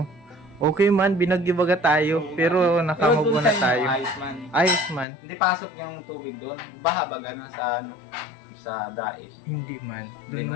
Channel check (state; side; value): drops out; right; at 5.1 s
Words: Okay man, binagyo-baga tayo, pero nakamubo na tayo. Ayos man. Ayos man. Hindi pasok yung tubig doon. Baha baga na sa sa dais. Hindi man. Doon Hindi